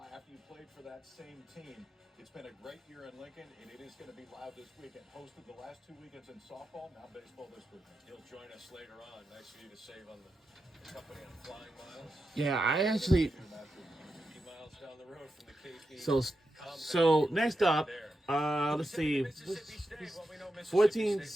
after you played for that same team. It's been a great year in Lincoln, and it is going to be loud this weekend. Hosted the last 2 weekends in softball, now baseball this weekend. He'll join us later on. Nice for you to save on the company on Flying Miles. yeah, I actually. 50 miles down the road from the KP. So next up, let's see. 14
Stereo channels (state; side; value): normal; both; correlation 0.88